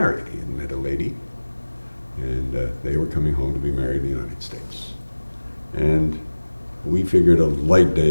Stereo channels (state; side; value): inverted; both; correlation -1.00